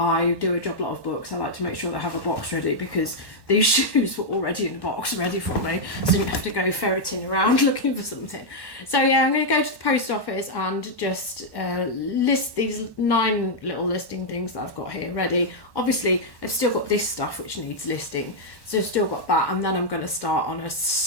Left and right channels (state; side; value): late; right; 1.1 ms